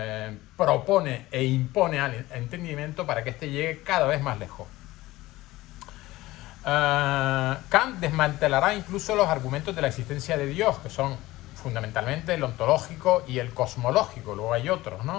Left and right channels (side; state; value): right; quieter; 18.0 dB